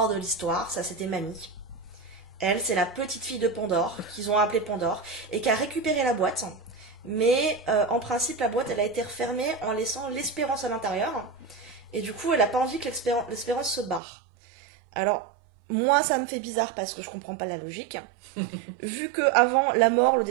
de l'histoire, ça c'était Mamie. Elle, c'est la petite fille de Pandore, qu'ils ont appelée Pandore, et qui a récupéré la boîte. Mais en principe, la boîte, elle a été refermée en laissant l'espérance à l'intérieur. Et du coup, elle a pas envie que l'espérance se barre. Alors, moi, ça me fait bizarre parce que je comprends pas la logique. Vu que avant la mort, le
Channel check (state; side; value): drops out; left; at 14.0 s